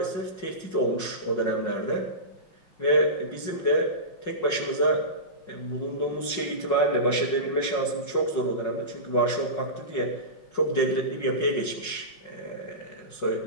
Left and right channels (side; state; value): right; late; 5.5 ms